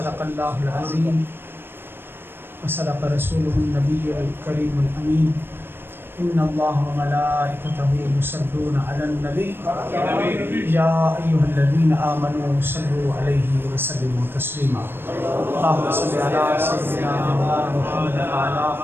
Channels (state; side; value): late; left; 0.10 ms